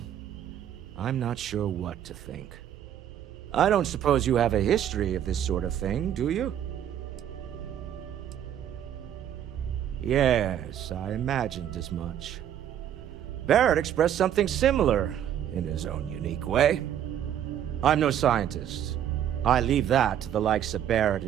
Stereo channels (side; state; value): left; quieter; 10.3 dB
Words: I'm not sure what to think. I don't suppose you have a history of this sort of thing, do you? Yes, I imagined as much. Barrett expressed something similar, in his own unique way. I'm no scientist. I leave that to the likes of Barrett